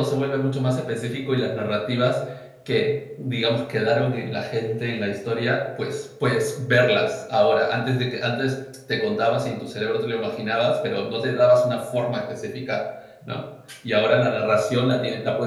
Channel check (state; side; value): identical; both; correlation 1.00